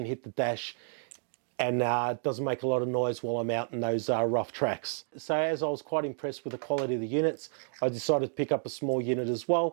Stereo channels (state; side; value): silent; left; digital silence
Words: hit the dash, and doesn't make a lot of noise while I'm out in those rough tracks. So as I was quite impressed with the quality of the units, I decided to pick up a small unit as